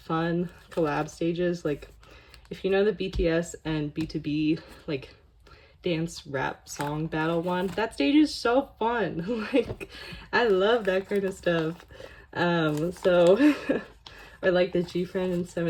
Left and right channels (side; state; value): both; identical; correlation 1.00